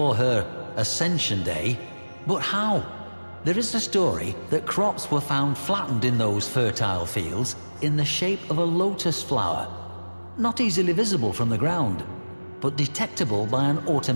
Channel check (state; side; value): inverted; both; correlation -1.00